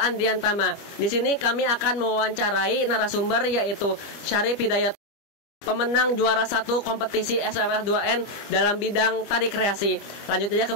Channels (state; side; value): late; right; 25 ms